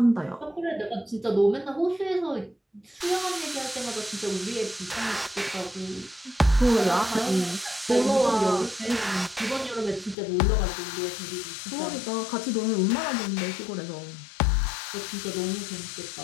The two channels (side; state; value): right; drops out; at 10.2 s